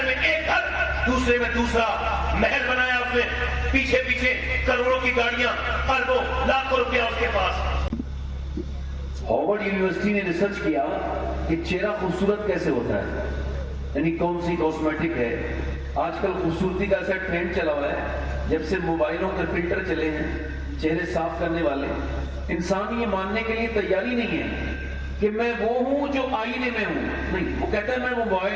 میں ایک گھر، دوسرے میں دوسرا محل بنایا اس نے، پیچھے پیچھے کروڑوں کی گاڑیاں، اربوں لاکھوں روپیہ اس کے پاس۔ ہارورڈ یونیورسٹی نے ریسرچ کیا کہ چہرہ خوبصورت کیسے ہوتا ہے، یعنی کون سی کاسمیٹک ہے۔ آج کل خوبصورتی کا ایسا ٹرینڈ چلا ہوا ہے، جب سے موبائلوں کے فلٹر چلے ہیں چہرے صاف کرنے والے، انسان یہ ماننے کے لیے تیاری نہیں ہے کہ میں وہ ہوں جو آئینے میں ہوں، نہیں، وہ کہتا ہے میں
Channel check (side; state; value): both; identical; correlation 1.00